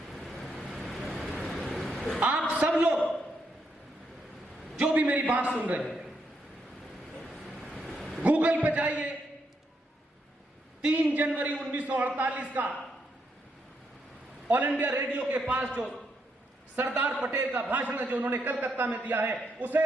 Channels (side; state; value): both; normal; correlation 0.79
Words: आप सब लोग जो भी मेरी बात सुन रहे हैं, गूगल पे जाइए, 3 जनवरी 1948 का ऑल इंडिया रेडियो के पास जो सरदार पटेल का भाषण है, जो उन्होंने कलकत्ता में दिया है, उसे